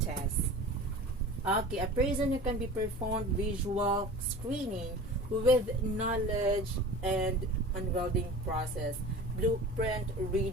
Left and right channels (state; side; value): normal; both; correlation 0.38